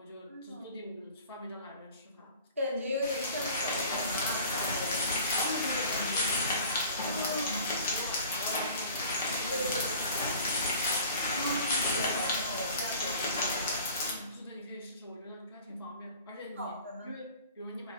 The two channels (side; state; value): both; inverted; correlation -0.45